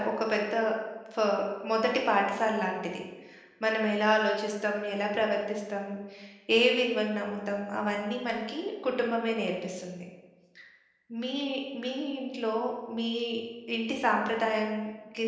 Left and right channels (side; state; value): both; identical; correlation 1.00